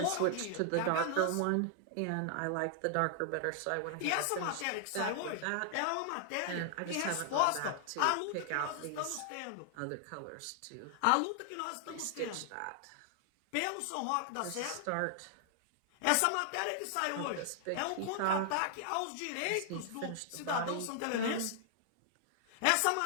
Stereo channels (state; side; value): different; both; correlation 0.00